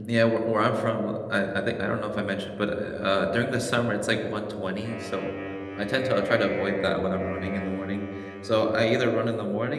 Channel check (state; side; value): identical; both; correlation 1.00